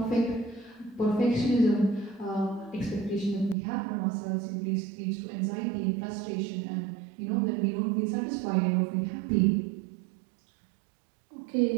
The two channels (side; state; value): left; drops out; at 3.6 s